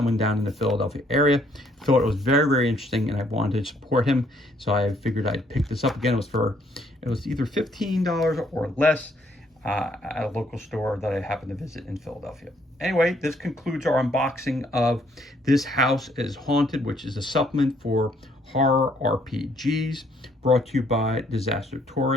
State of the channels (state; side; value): normal; both; correlation 0.67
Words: down in the Philadelphia area. Thought it was very, very interesting, and I wanted to support him, so I figured I'd pick this up. Again, it was either $15 or less at a local store that I happened to visit in Philadelphia. Anyway, this concludes our unboxing of This House is Haunted, which is a supplement for horror RPGs, brought to you by Disaster